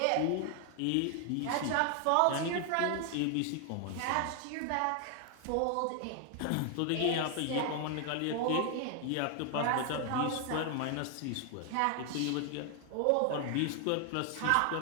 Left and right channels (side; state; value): both; different; correlation 0.00